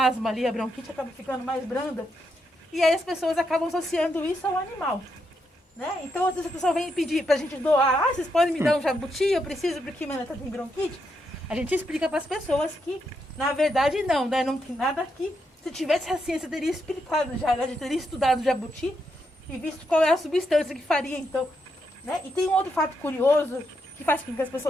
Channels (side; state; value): both; normal; correlation 0.81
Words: asma ali, a bronquite acaba ficando mais branda. E aí as pessoas acabam associando isso ao animal. Né? Então, às vezes a pessoa vem pedir pra gente doar, vocês podem me dar um jabuti, eu preciso porque minha neta tem bronquite. A gente explica para as pessoas que, na verdade, não, né? Não tem nada aqui. Se tivesse a ciência, teria explicado já, né? Teria estudado o jabuti e visto qual é a substância que faria, então. Né? E tem um outro fato curioso que faz com que as